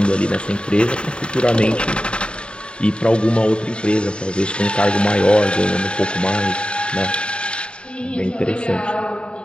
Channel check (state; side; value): late; right; 0.053 ms